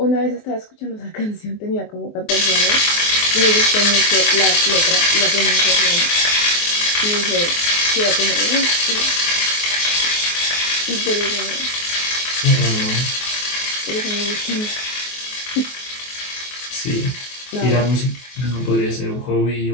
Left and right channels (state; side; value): late; right; 24 ms